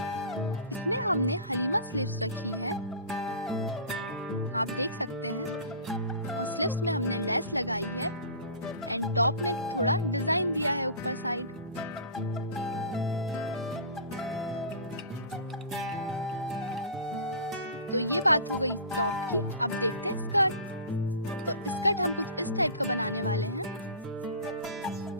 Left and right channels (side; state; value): both; inverted; correlation -0.37